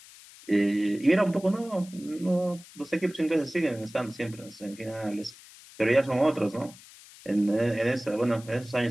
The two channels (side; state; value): left; noise; hiss, 20 dB below the sound